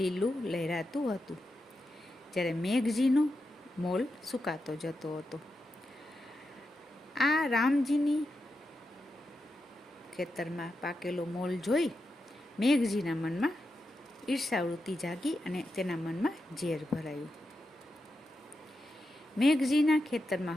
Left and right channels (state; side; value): normal; both; correlation 0.88